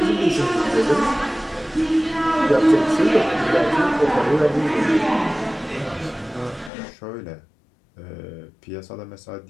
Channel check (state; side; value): drops out; right; at 6.7 s